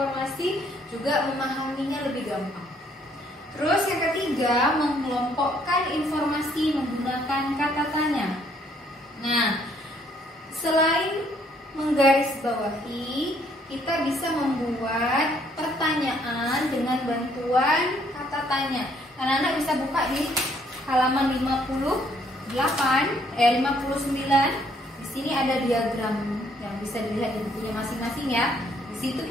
juga memahaminya lebih gampang. Terus yang ketiga, mengelompokkan informasi menggunakan kata tanya. Nah, selain menggarisbawahi, kita bisa membuat pertanyaan dengan bantuan kata tanya. Anak-anak bisa buka di halaman 59. Di sini ada diagram yang bisa dilihat di bukunya masing-masing ya. Di situ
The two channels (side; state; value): both; normal; correlation 0.66